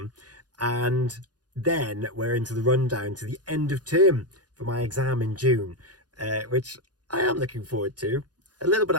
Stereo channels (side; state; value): left; late; 0.69 ms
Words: And then we're into the rundown to the end of term for my exam in June, which I am looking forward to. A little bit